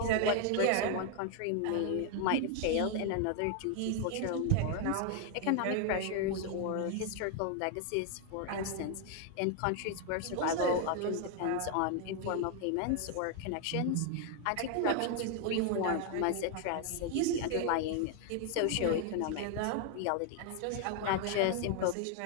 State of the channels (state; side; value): different; both; correlation 0.00